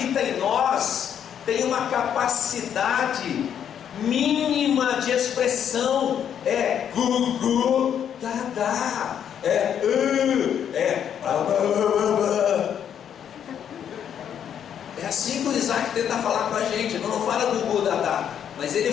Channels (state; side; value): quieter; right; 8.9 dB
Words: em nós tem uma capacidade mínima de expressão. É gu, dá, é assim que o Isaac tenta falar com a gente. Ele não fala gu, dá, mas